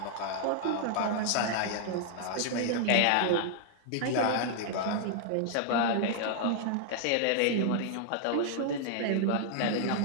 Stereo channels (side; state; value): both; different; correlation -0.01